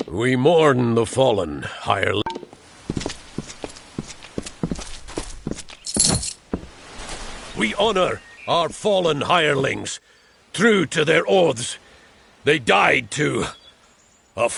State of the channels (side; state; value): both; identical; correlation 1.00